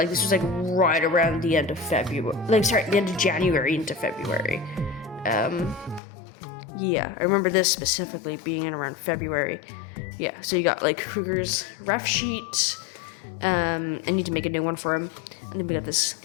this was like right around the end of February. The end of January into February. Yeah, I remember this specifically being in around February. yeah, so you got like Kruger's ref sheet. I need to make a new one for him. And then we got this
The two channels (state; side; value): drops out; right; at 6.0 s